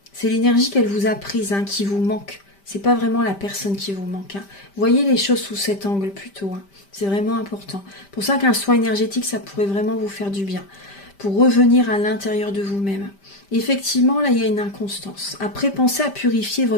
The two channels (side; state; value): right; late; 5.1 ms